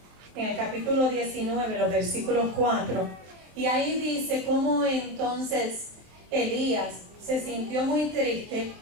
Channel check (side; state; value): left; late; 24 ms